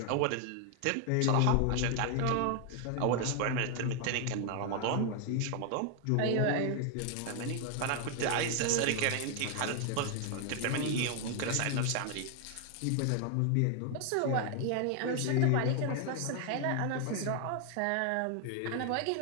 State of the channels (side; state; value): both; different; correlation 0.00